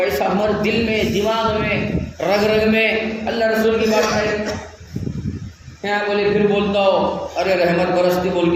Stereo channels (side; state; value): both; identical; correlation 1.00